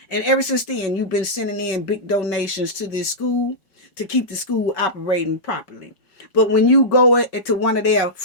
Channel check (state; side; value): late; right; 5.3 ms